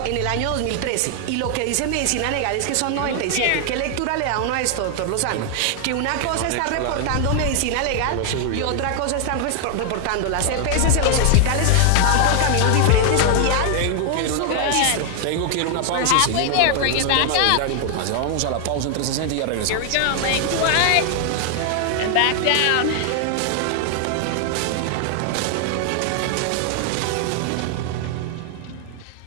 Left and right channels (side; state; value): both; different; correlation 0.00